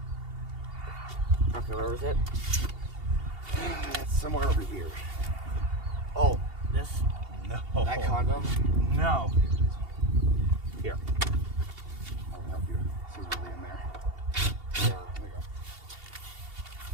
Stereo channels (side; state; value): left; late; 2.8 ms